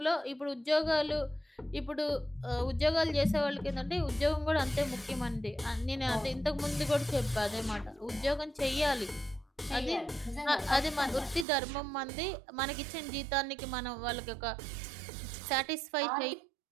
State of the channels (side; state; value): left; drops out; at 11.5 s